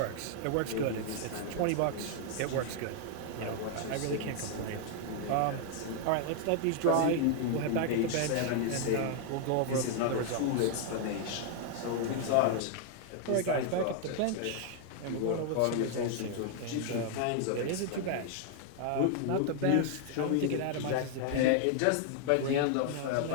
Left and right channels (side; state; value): both; different; correlation 0.00